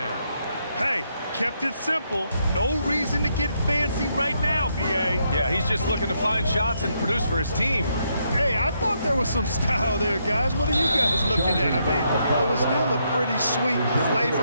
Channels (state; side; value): inverted; both; correlation -0.77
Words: Hey, kept it simple. No reason to get fancy right now, B.A. Yeah, he's just looking to find shots and produce for his team. Hey, I thought there was some style there, guys. What are you guys looking at? I mean, it was still a pretty sweet,